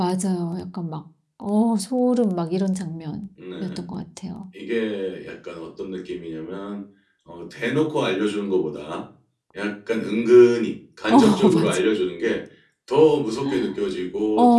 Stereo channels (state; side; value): identical; both; correlation 1.00